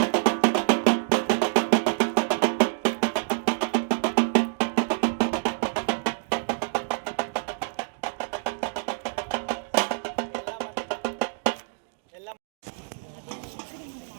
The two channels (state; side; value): silent; left; digital silence